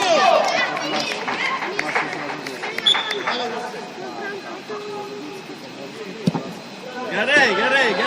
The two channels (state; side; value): identical; both; correlation 1.00